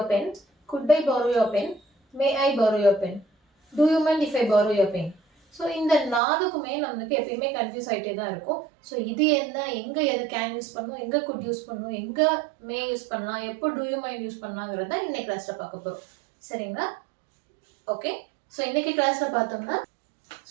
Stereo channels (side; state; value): left; drops out; at 6.2 s